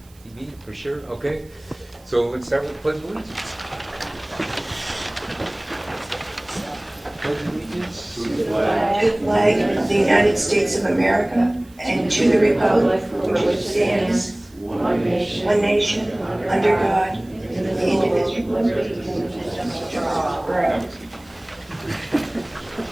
TV for sure. Okay. So let's start with the Pledge of Allegiance. Pledge of Allegiance to the flag. To the flag of the United States of America and to the republic for which it stands, one nation, under God, indivisible.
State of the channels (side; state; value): right; noise; hiss, 29 dB below the sound